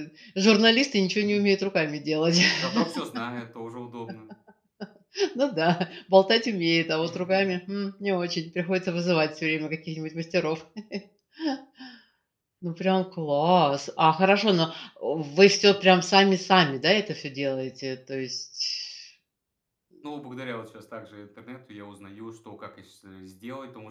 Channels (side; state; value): both; identical; correlation 1.00